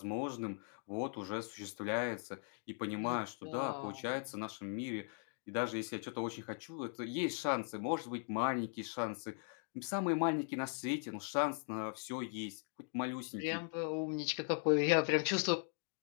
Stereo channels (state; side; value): silent; right; 51 dB below the other